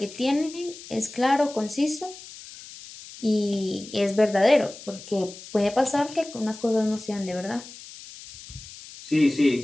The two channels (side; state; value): left; noise; hiss, 16 dB below the sound